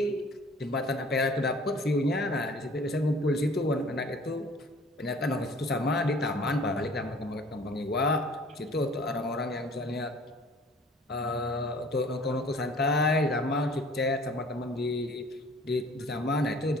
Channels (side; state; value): both; normal; correlation 0.50